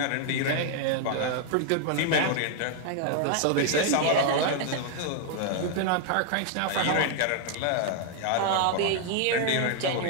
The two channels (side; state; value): both; different; correlation 0.00